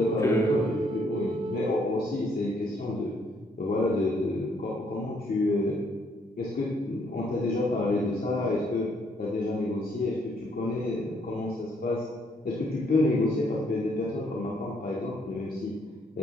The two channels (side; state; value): both; normal; correlation 0.69